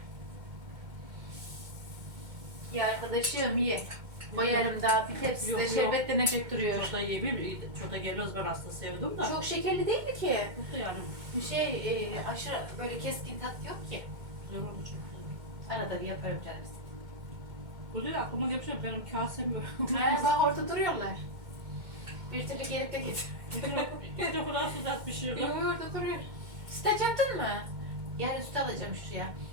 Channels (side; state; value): left; late; 2.1 ms